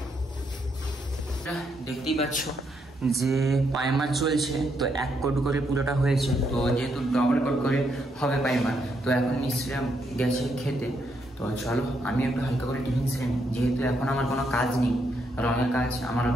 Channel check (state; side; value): normal; both; correlation 0.77